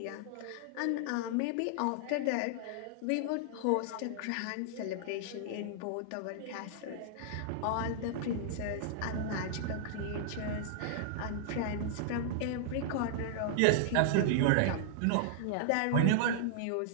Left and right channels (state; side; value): different; both; correlation -0.01